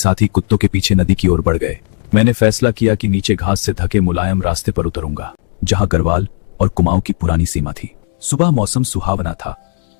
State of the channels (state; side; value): silent; right; digital silence